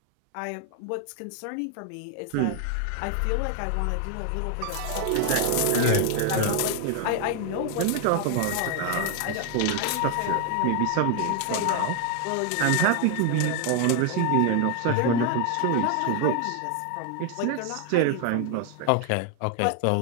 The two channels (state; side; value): different; both; correlation 0.00